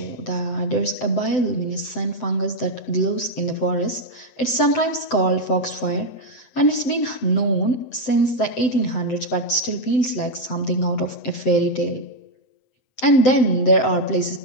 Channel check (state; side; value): late; right; 7.8 ms